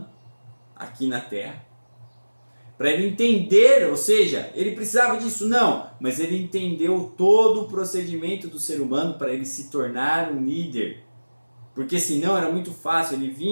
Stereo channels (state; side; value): inverted; both; correlation -1.00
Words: aqui na Terra. Para ele entender, ou seja, ele precisava disso? Não, mas ele entendeu todo o procedimento do ser humano para ele se tornar um líder. Porque senão era muito fácil, ele